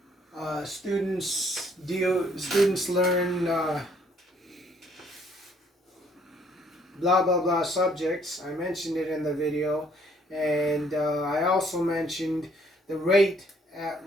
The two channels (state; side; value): normal; both; correlation 0.64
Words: students learn blah blah blah subjects. I mentioned it in the video, and I also mentioned the rate